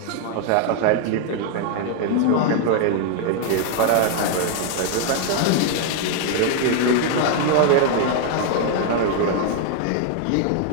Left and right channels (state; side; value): different; both; correlation 0.00